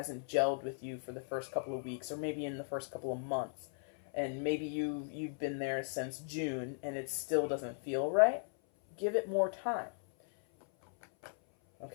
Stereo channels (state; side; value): silent; right; 53 dB below the other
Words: gelled with you for the first couple of weeks, or maybe in the first couple of months, and maybe you've been there since June and it still doesn't feel right, give it more time.